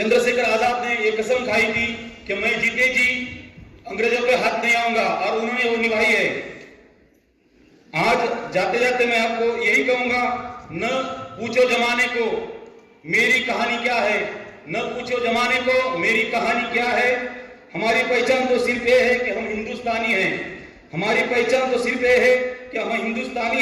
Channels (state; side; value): identical; both; correlation 1.00